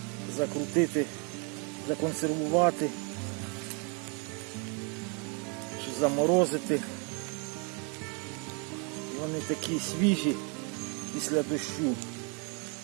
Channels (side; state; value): left; quieter; 35.3 dB